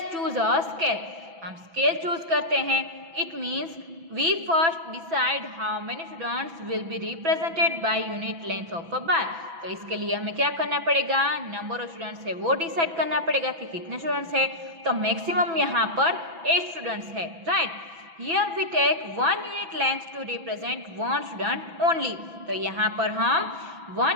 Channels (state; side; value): late; left; 6.0 ms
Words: choose a scale. हम स्केल चूज करते हैं। It means we first decide how many students will be represented by unit length of a bar. तो इसके लिए हमें क्या करना पड़ेगा, नंबर ऑफ स्टूडेंट्स है वो डिसाइड करना पड़ेगा कि कितने स्टूडेंट्स है। तो मैक्सिमम यहाँ पर 8 स्टूडेंट्स है, right. Here we take 1 unit length to represent 1 student only. तो यहाँ पर हम